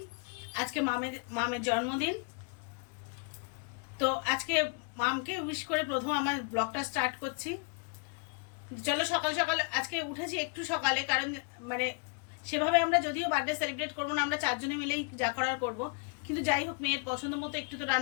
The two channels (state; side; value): quieter; right; 33.4 dB